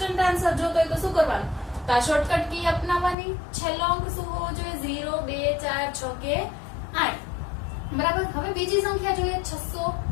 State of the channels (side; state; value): right; drops out; at 3.2 s